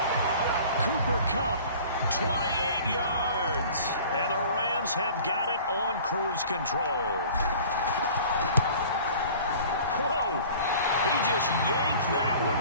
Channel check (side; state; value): both; inverted; correlation -0.46